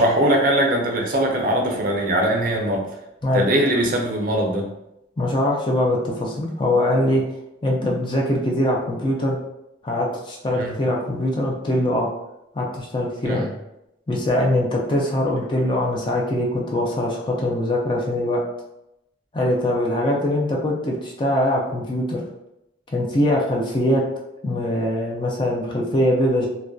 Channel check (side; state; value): both; normal; correlation 0.51